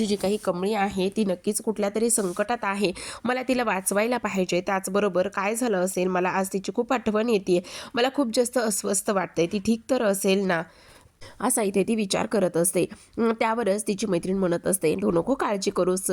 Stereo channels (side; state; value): both; identical; correlation 1.00